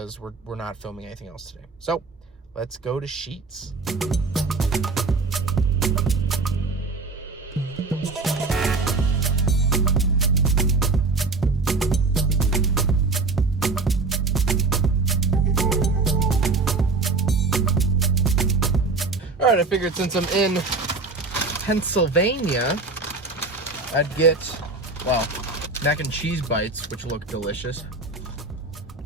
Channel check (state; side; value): quieter; left; 3.9 dB